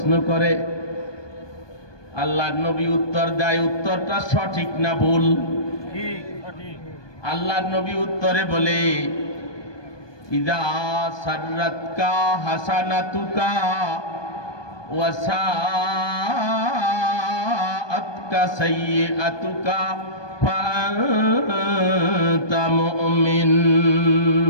করে, আল্লাহর নবী উত্তর দেয়, উত্তরটা সঠিক না ভুল? আল্লাহর নবী উত্তরে বলে, ইদা সাররাতকা হাসানাতুকা ওয়া সাআতকা সাইয়্যাতুকা ফাআনতা মুমিন।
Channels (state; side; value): late; right; 1.2 ms